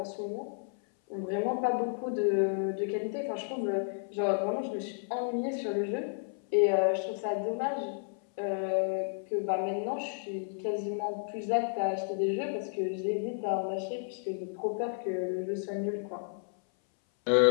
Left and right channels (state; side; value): silent; right; 56 dB below the other